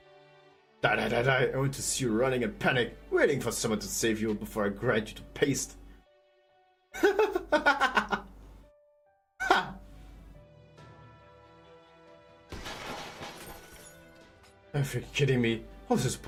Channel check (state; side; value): identical; both; correlation 1.00